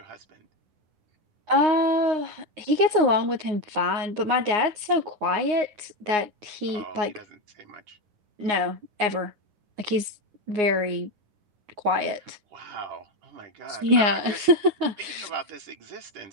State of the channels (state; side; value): late; left; 9.6 ms